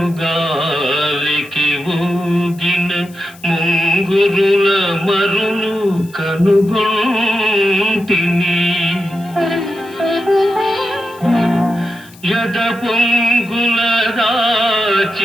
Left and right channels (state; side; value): noise; left; hiss, 24 dB below the sound